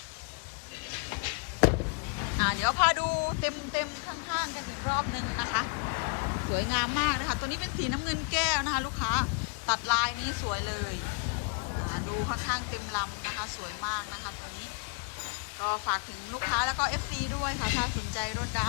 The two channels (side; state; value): right; quieter; 34.3 dB